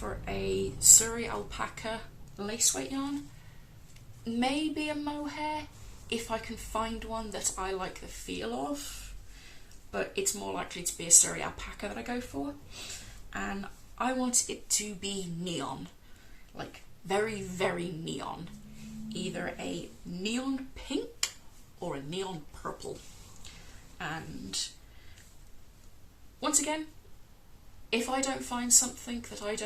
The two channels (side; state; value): both; identical; correlation 1.00